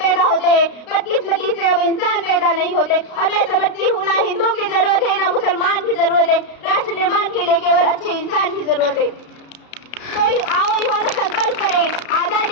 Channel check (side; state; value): right; late; 33 ms